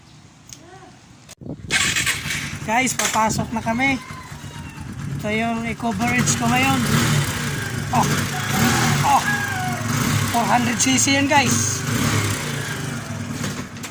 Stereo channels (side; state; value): both; identical; correlation 1.00